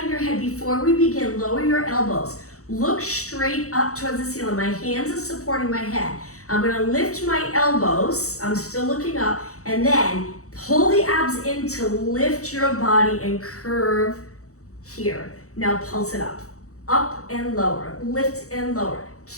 your head. Before we begin, lower your elbows. Look straight up towards the ceiling. My hands are supporting my head. I'm gonna lift my elbows. I'm still looking up. And then pull the abs in to lift your body and curve here. Now pulse it up. Up and lower. Lift and lower.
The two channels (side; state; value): right; late; 0.65 ms